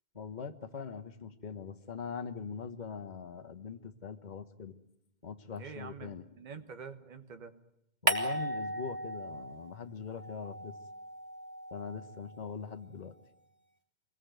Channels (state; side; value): late; left; 2.1 ms